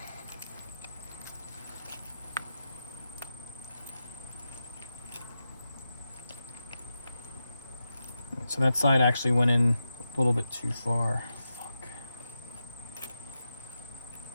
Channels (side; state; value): both; inverted; correlation -0.89